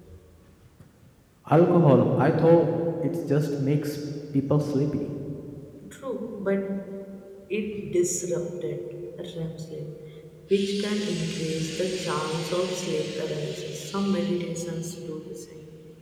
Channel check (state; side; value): identical; both; correlation 1.00